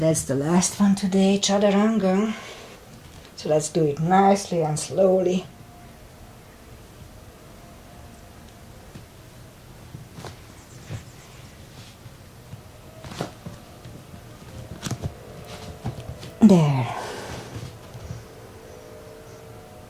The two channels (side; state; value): both; identical; correlation 1.00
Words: the last one today, chaturanga. So let's do it nicely and slowly. There.